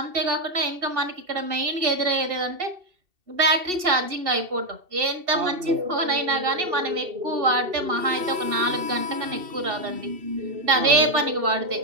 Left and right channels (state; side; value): late; left; 2.7 ms